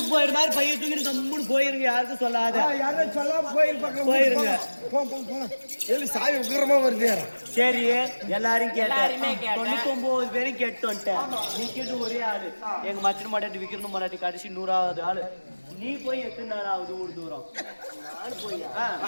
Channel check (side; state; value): both; inverted; correlation -1.00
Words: போயிரு மாதிரி பையன் தூக்கி கம்முன்னு போயிருங்க. யாருக்கும் சொல்லாத. யாரும் சொல்லாம போயிருப்பாங்க. போயிருங்க. எಲ್ಲಿ சாமி உக்கிரமா வருது. சரி எல்லாரும் கேட்டாருமே 99 பேரும் கேட்டு வந்துட்டேன். நீ கேட்டு ஒரே ஆளு. எங்க மச்சன் மாட்டாட்டி விக்கணும் மாட்டாட்டி கடைசி 100வது ஆளு. நீ போய் எத்தனை நாள் ஆகுது ஊர் தூரம்?